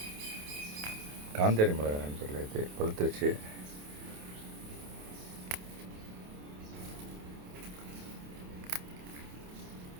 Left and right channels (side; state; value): left; late; 28 ms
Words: காந்தாரி மிளகா நண்பர்களே, இது பழுத்துருச்சு.